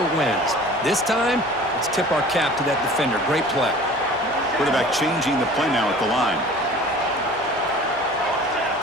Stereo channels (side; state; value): both; normal; correlation 0.44